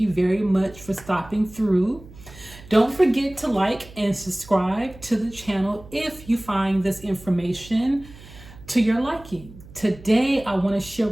very much for stopping through. Don't forget to like and subscribe to the channel if you find this information to your liking. Today I want to share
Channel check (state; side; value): noise; right; hum, 19 dB below the sound